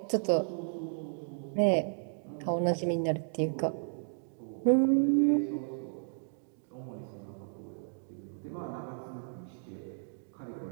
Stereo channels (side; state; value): left; silent; digital silence